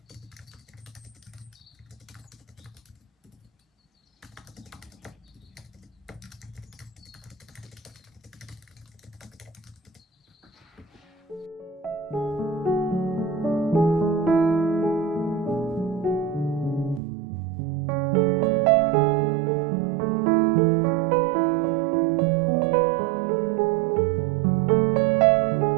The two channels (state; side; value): drops out; left; at 17.0 s